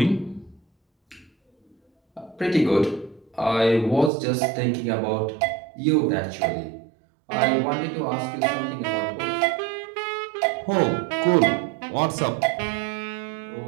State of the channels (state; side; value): drops out; left; at 4.1 s